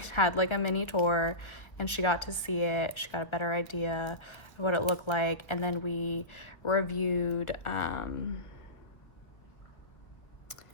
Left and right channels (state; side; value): late; right; 1.2 ms